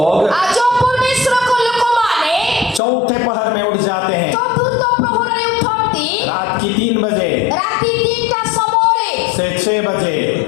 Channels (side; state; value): right; drops out; at 2.8 s